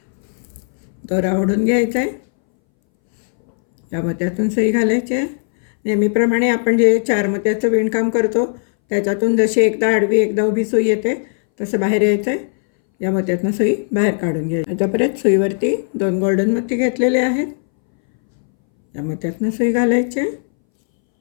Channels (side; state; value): right; silent; 64 dB below the other